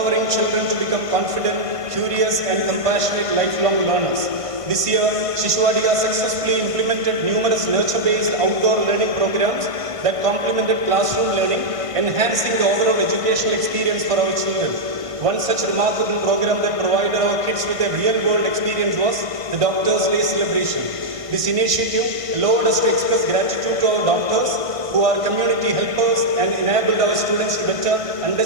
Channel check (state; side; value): late; left; 1.5 ms